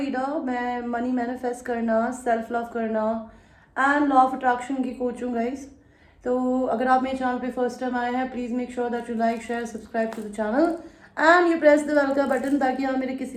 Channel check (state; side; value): identical; both; correlation 1.00